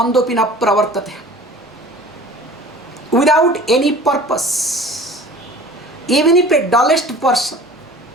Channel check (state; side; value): normal; both; correlation 0.44